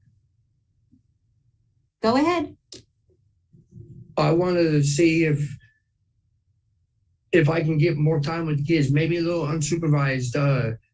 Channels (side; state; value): both; identical; correlation 1.00